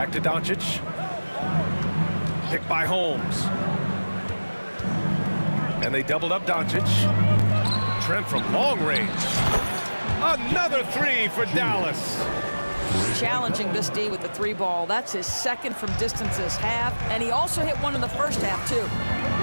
to Doncic. Picked by Holmes. And they doubled up Doncic. Trent from long range. Another three for Dallas. Challenging this D with the 3 ball. That's his second from distance this half. And he also hit one in the first half, too.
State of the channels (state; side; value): inverted; both; correlation -1.00